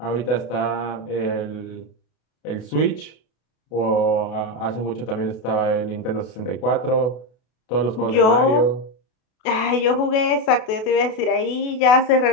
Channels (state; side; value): late; right; 32 ms